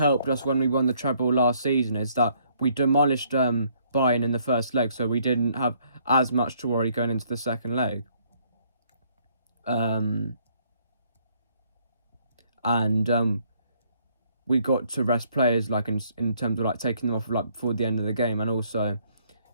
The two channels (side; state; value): both; inverted; correlation -0.67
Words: us when we won the treble last season is that we demolished Bayern in the first leg, so we didn't have as much to worry going into the second leg. We got to rest players like in terms of like taking them off like before the end of the game, and also